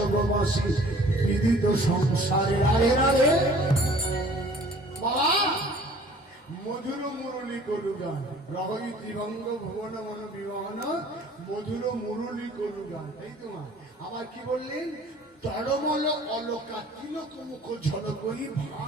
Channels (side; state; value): both; normal; correlation 0.51